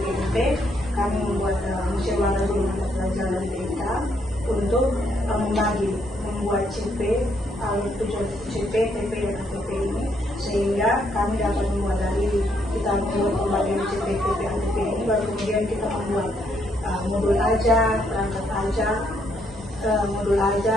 Kami membuat musyawarah guru mata pelajaran TIK untuk membuat CP, tujuan CP, TP dan ATP ini, sehingga kami dapat membuat dari kita membuat pembagian CP, TP, ATP ini, baru kemudian kita membuat modul ajar, perangkat ajar, modul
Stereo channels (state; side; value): normal; both; correlation 0.73